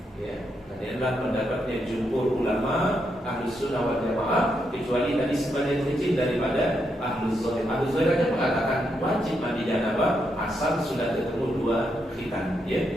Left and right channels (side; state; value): both; normal; correlation 0.81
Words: Ya, ini adalah pendapatnya jumhur ulama Ahlus Sunnah wal Jamaah, kecuali tadi sebagian kecil daripada Ahlus Zahir. Ahlus Zahir hanya mengatakan wajib mandi janabah asal sudah ketemu 2 khitan, ya.